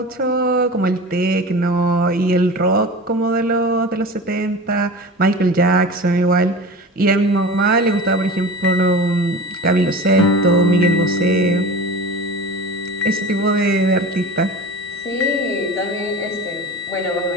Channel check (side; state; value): both; normal; correlation 0.33